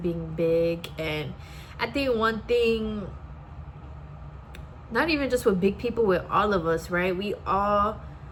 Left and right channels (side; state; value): both; identical; correlation 1.00